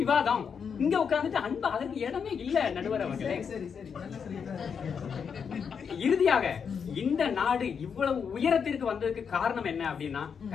விவாதம். இங்க உட்கார்ந்துட்டு அன்பா அதற்கு இடமே இல்ல நடுவர் அவர்களே. இறுதியாக இந்த நாடு இவ்வளவு உயரத்திற்கு வந்ததுக்கு காரணம் என்ன அப்படின்னா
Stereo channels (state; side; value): quieter; right; 6.6 dB